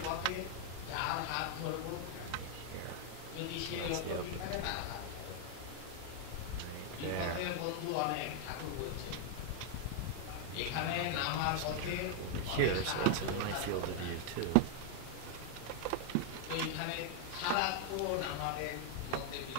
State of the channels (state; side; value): different; both; correlation 0.00